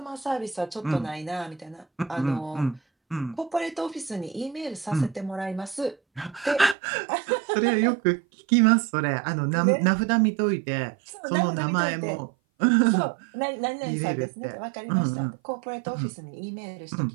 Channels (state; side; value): drops out; left; at 6.8 s